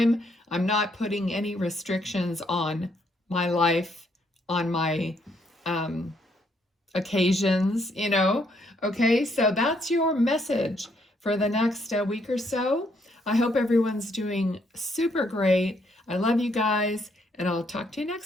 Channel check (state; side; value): normal; both; correlation 0.72